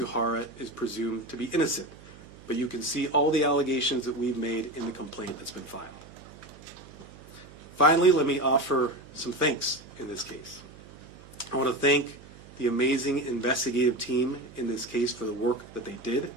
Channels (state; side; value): noise; right; hum, 20 dB below the sound